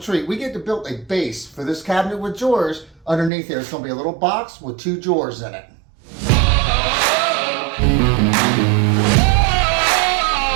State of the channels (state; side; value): drops out; left; at 3.3 s